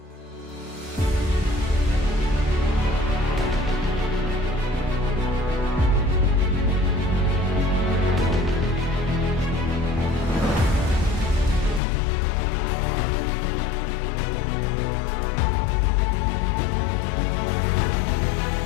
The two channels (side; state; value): right; drops out; at 11.8 s